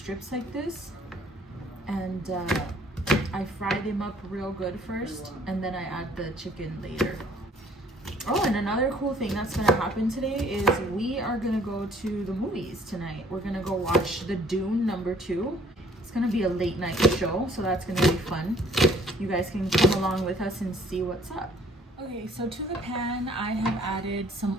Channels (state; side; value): normal; both; correlation 0.58